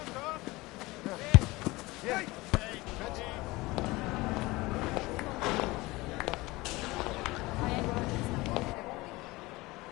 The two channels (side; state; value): right; quieter; 21.3 dB